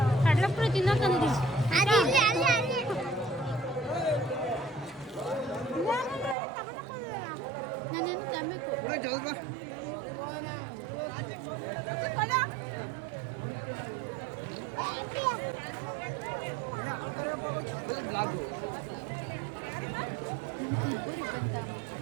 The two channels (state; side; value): drops out; left; at 6.4 s